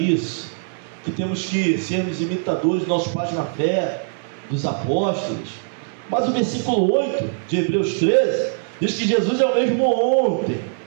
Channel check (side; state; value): left; silent; 64 dB below the other